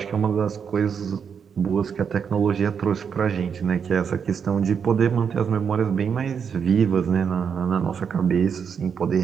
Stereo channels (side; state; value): left; quieter; 6.9 dB